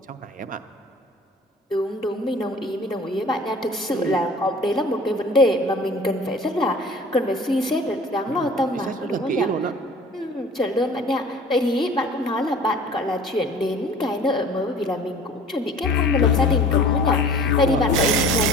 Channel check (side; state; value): both; normal; correlation 0.46